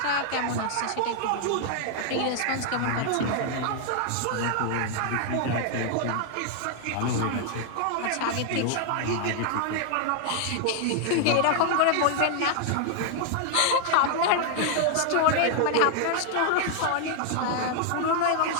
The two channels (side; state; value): both; different; correlation 0.00